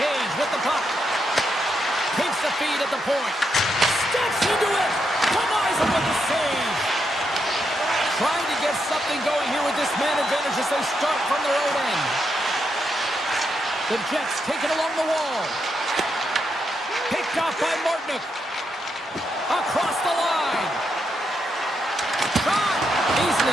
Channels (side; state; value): both; normal; correlation 0.82